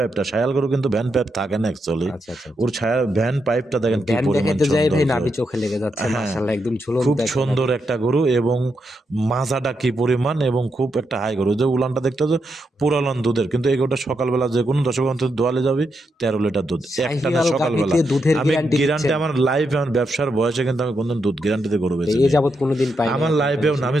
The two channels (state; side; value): normal; both; correlation 0.83